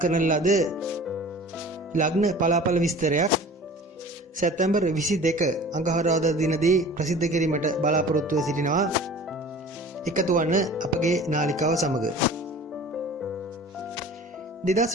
ලද ලග්න පලාපල විස්තරයක් සැප්තැම්බර් 22 අඟහරුවාදා දිනදී ප්‍රසිද්ධ කිරීමට බලාපොරොත්තුව සිටිනවා. එකතු වන්න අපගේ නාලිකාව සමග.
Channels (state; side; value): normal; both; correlation 0.43